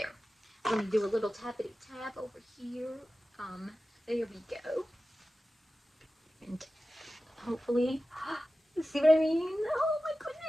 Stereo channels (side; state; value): both; normal; correlation 0.95